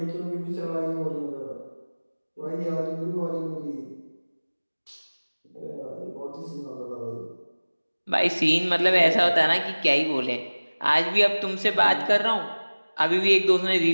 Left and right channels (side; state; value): both; inverted; correlation -1.00